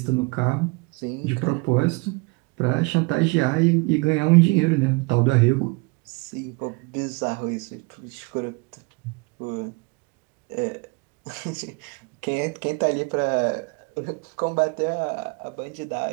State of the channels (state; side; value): quieter; left; 28.4 dB